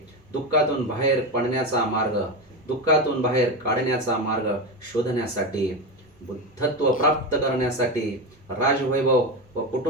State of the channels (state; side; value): normal; both; correlation 0.17